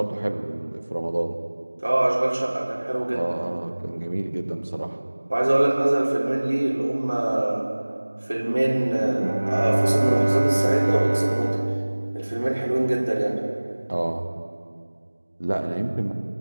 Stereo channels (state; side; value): inverted; both; correlation -1.00